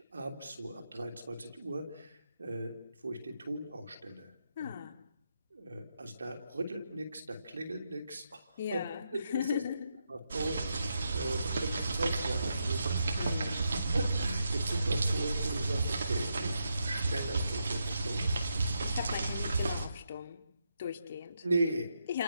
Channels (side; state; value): both; inverted; correlation -0.83